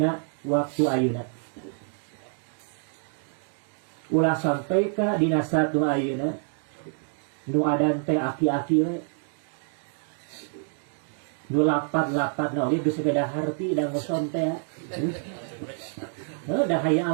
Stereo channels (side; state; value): left; silent; 60 dB below the other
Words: waktu ayeuna. Ulah sampai ka dina satu ayeuna nu adan teh aki-aki we. Nu lapat-lapat na oge geus beda harti da ngoson teh. Da hayya